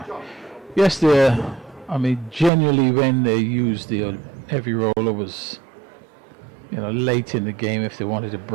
Yes, generally when they use the heavy roller was, late in the game if they wanted to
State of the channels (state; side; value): drops out; left; at 2.5 s